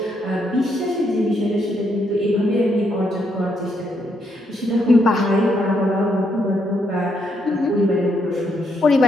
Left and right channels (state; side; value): normal; both; correlation 0.76